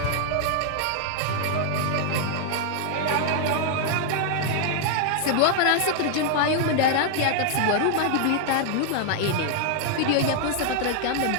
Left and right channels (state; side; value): different; both; correlation 0.00